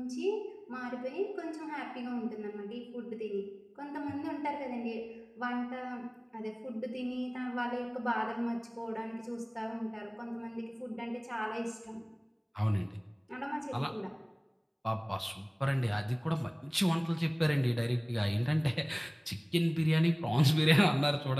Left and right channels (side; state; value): both; identical; correlation 1.00